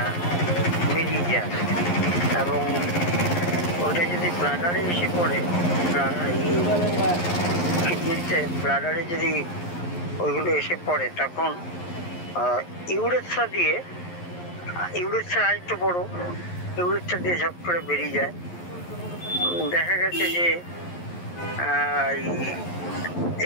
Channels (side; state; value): right; late; 11 ms